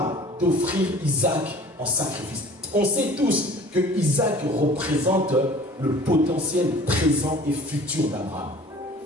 d'offrir Isaac en sacrifice. On sait tous que Isaac représente le potentiel présent et futur d'Abraham.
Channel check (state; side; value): normal; both; correlation 0.47